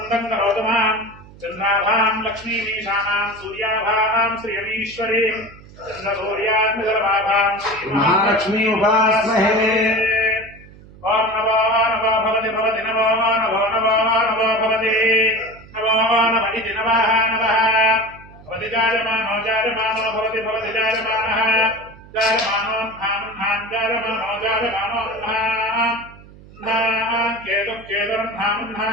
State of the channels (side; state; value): right; noise; hum, 21 dB below the sound